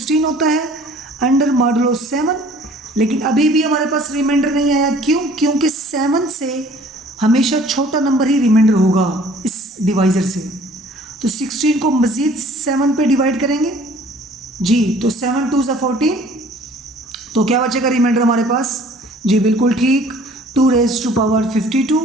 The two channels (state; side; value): normal; both; correlation 0.53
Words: होता है अंडर मॉडुलो 7। लेकिन अभी भी हमारे पास रिमाइंडर नहीं आया, क्यों, क्योंकि 7 से हमेशा छोटा नंबर ही रिमाइंडर होगा इस डिवाइजर से। तो 16 को मज़ीद 7 पे डिवाइड करेंगे जी, तो 7 2 14, तो क्या बचेगा रिमाइंडर हमारे पास जी, बिल्कुल ठीक 2 raise to power 52